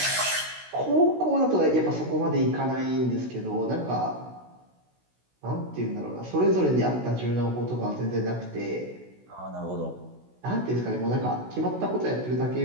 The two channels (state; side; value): late; left; 16 ms